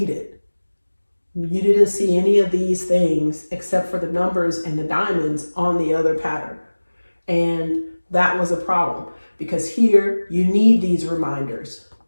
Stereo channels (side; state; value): both; inverted; correlation -1.00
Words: You didn't see any of these things except for the numbers and the diamonds on the other pattern. And that was a problem, because here you need these reminders.